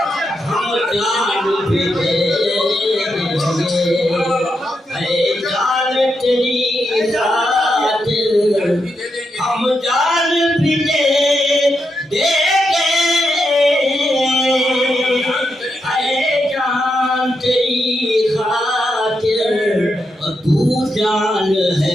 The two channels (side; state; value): both; normal; correlation 0.84